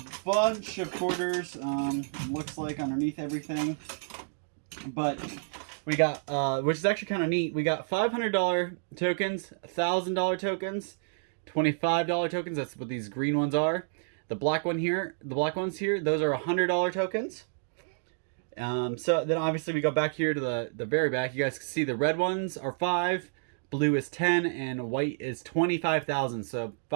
bunch of quarters, looks like underneath everything. But we got, which is actually kind of neat, we got $500 tokens, $1,000 tokens, $25 tokens, that's what these green ones are. The black ones here, those are $100 tokens. So then obviously we go back here to the very back. You guys can see the red ones are 5, blue is 10, and white is 25,000. So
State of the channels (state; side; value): silent; left; digital silence